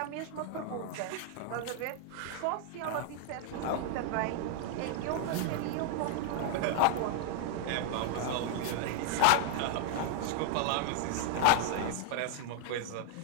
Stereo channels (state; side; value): different; both; correlation -0.01